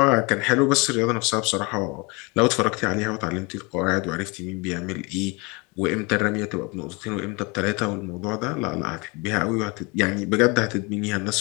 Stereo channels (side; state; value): right; quieter; 28.4 dB